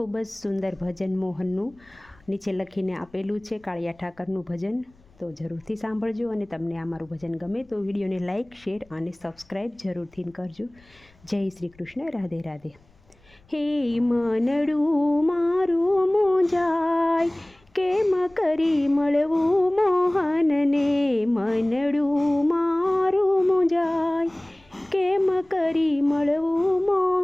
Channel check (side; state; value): left; noise; rumble, 30 dB below the sound